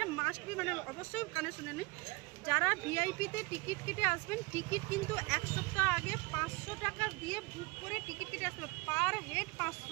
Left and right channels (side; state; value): left; quieter; 25.7 dB